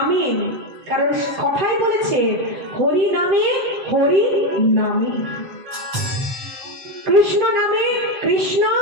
কারণ কথাই বলেছে হরি নামে হরি নামে, কৃষ্ণ নামে কৃষ্ণ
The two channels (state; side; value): late; left; 7.8 ms